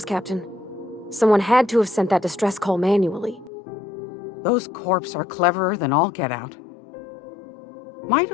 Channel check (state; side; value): drops out; right; at 3.5 s